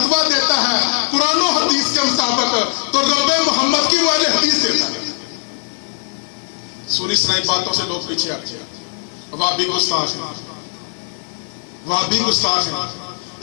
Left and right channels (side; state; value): right; silent; digital silence